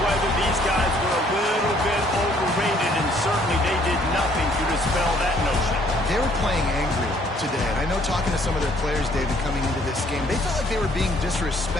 whether these guys were a little bit overrated, and certainly they did nothing to dispel that notion. They were playing angry today, and I know talking to some of their players, David, coming into this game, they felt like they were being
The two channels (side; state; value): both; normal; correlation 0.62